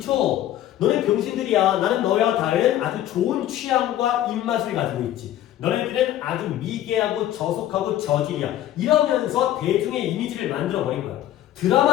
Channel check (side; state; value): right; quieter; 12.6 dB